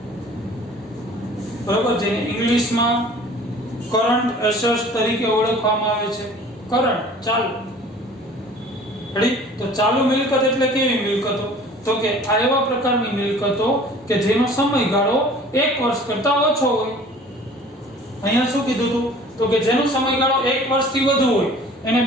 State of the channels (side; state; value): both; normal; correlation 0.48